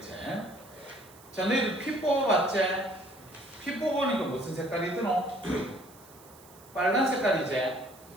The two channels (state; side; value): noise; right; hiss, 23 dB below the sound